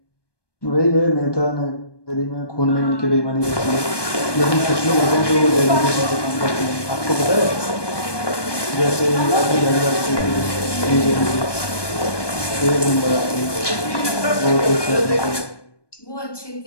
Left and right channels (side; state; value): right; late; 1.2 ms